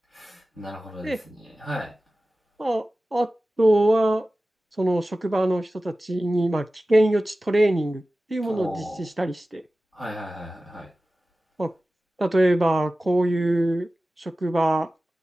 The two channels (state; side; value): normal; both; correlation 0.96